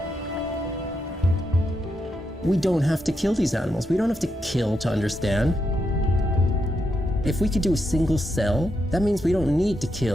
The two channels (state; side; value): normal; both; correlation 0.83